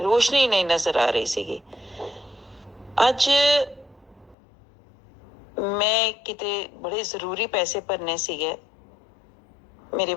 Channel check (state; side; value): drops out; right; at 4.4 s